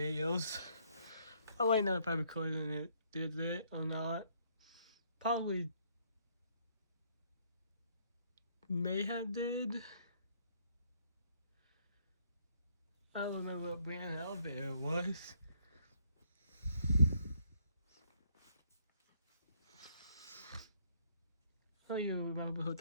I'll let you know if I recorded it, did it or not. Probably may have did. I don't remember what brand elevator it was. I don't even remember what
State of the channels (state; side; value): inverted; both; correlation -0.67